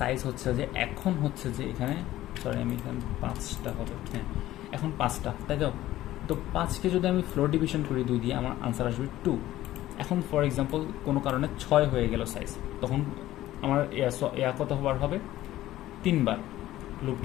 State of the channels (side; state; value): right; quieter; 14.8 dB